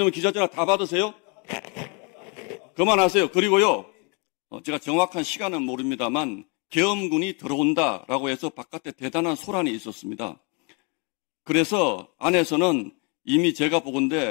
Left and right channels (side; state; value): right; quieter; 33.1 dB